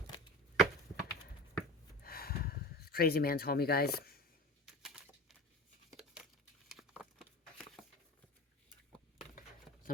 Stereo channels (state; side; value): normal; both; correlation 0.33